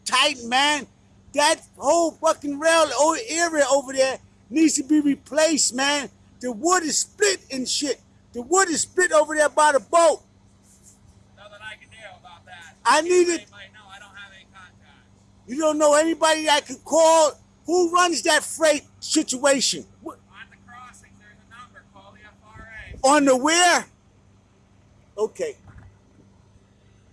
tight, man. That whole fucking rail area over there needs to be replaced, man. The wood is split and shit. The wood is split over there by the boat. Nothing I can do about that. I need it. They might know I don't have any contacts. You don't know anybody that can call? Who runs that freight situation? On the crossings, there's a number. Call the FRA. On the where? Okay.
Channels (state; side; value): identical; both; correlation 1.00